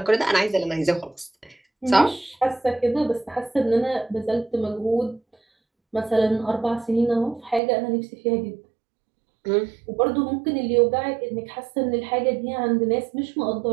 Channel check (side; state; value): left; drops out; at 7.6 s